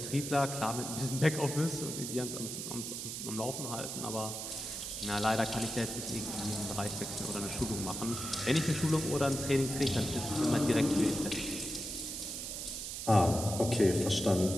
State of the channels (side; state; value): right; noise; hiss, 6 dB below the sound